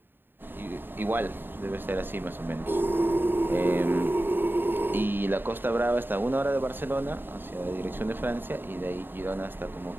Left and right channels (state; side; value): late; left; 0.096 ms